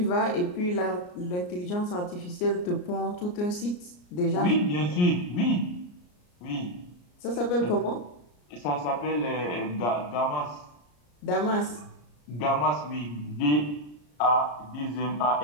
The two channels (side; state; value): right; late; 34 ms